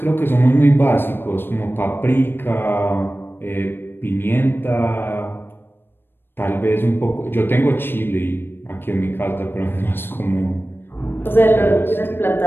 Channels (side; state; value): right; late; 0.10 ms